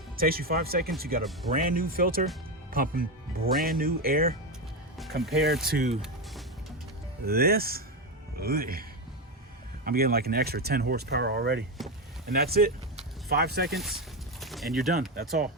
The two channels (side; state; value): both; normal; correlation 0.12